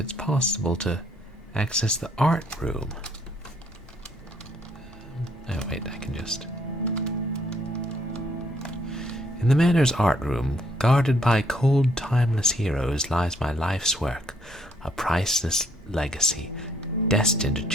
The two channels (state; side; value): normal; both; correlation 0.68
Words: possible to access the art room. Oh, wait, I can just... In the Manor's art room, guarded by cold, timeless heroes, lies my life's work, a priceless legacy, destined to